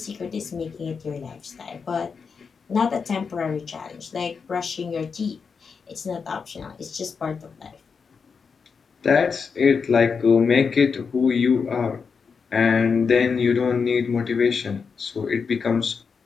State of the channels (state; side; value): quieter; right; 5.6 dB